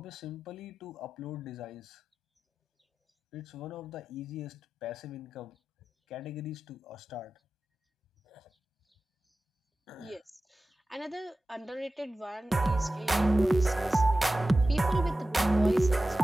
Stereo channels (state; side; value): normal; both; correlation 0.94